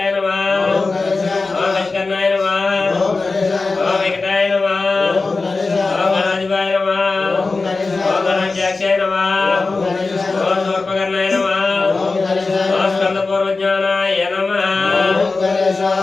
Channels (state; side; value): quieter; right; 3.8 dB